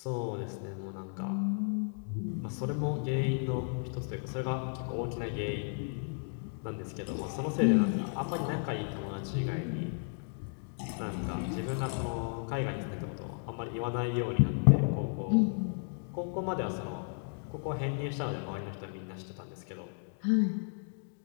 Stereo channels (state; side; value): silent; right; 55 dB below the other